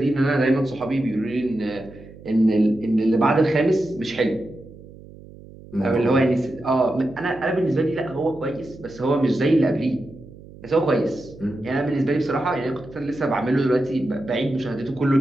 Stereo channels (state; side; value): noise; right; hum, 19 dB below the sound